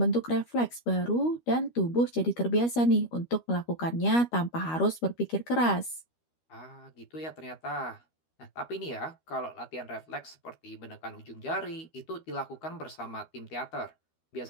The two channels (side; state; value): right; late; 13 ms